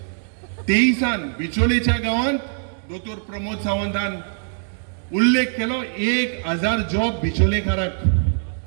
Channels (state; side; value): silent; left; digital silence